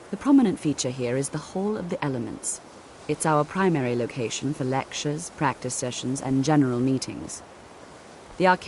The prominent feature here is the Hall of the Elements. It's our primary location for lectures, practice sessions, and general meetings. The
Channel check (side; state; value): both; identical; correlation 1.00